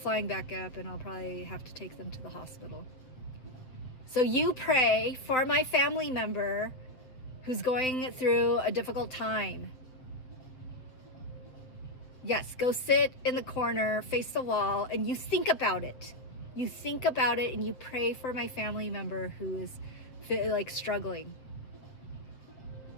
back up and I'll probably have to take them to the hospital. So you pray for my family member who's going through a difficult time. Yes, go sit in the corner, face the wall, and you think about it. You think about it and you pray for my family member who is like struggling.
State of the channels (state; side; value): late; right; 7.8 ms